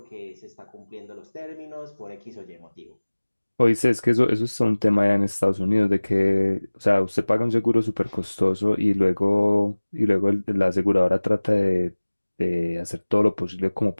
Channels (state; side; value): inverted; both; correlation -1.00